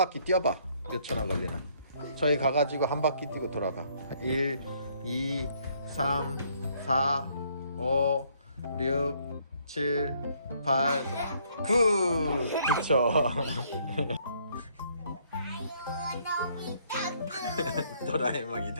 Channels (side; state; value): both; inverted; correlation -0.66